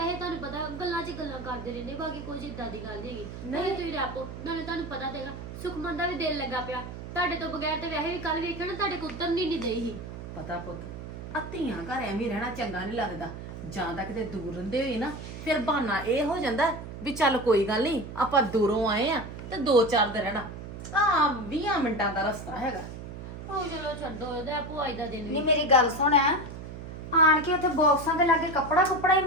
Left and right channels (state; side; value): noise; right; hum, 10 dB below the sound